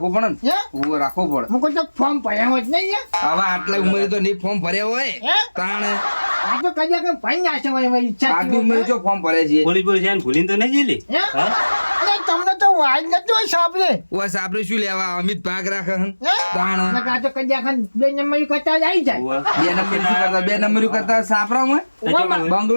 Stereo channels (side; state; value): both; inverted; correlation -1.00